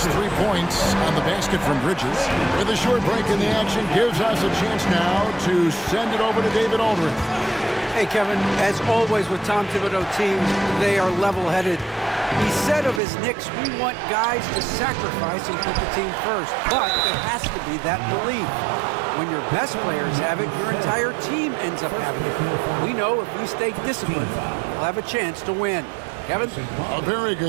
3 points on the basket from Bridges. With a short break in the action, gives us a chance now to send it over to David Aldridge. Hey, Kevin, as always with Tom Thibodeau teams, they are level-headed. He said of his Knicks, we want guys to sacrifice and put the team first, but it has to be that belief. When your best players have it, your entire team ends up having it. We know if we stay disciplined, we'll have a chance to win. Kevin? A very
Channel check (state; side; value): drops out; left; at 13.0 s